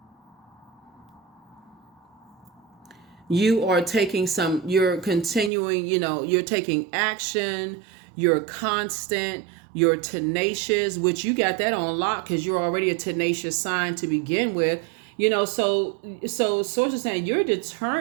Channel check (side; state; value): left; drops out; at 5.5 s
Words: you are taking some, you're continuing, you're taking action, you're constant, you're tenacious, which you got that on lock because you're already a tenacious sign to begin with. So source is saying you're